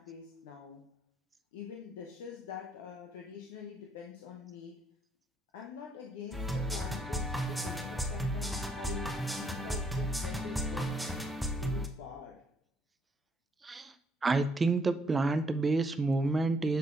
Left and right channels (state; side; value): normal; both; correlation 0.72